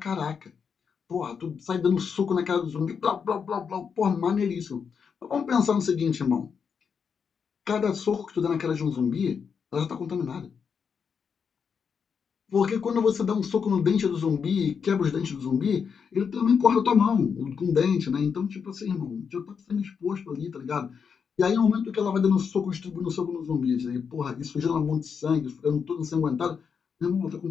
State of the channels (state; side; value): quieter; right; 6.4 dB